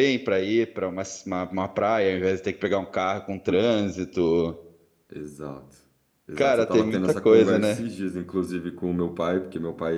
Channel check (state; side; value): identical; both; correlation 1.00